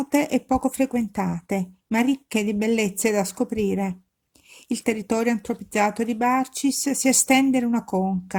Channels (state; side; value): identical; both; correlation 1.00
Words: e poco frequentate, ma ricche di bellezze da scoprire. Il territorio antropizzato di Barcis si estende in una